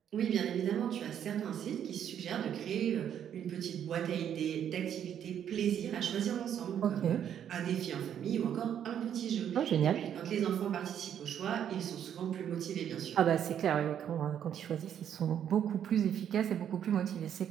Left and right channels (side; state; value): left; quieter; 9.4 dB